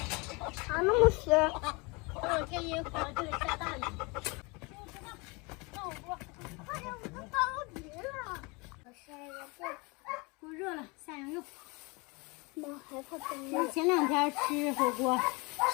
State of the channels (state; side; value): quieter; right; 27.9 dB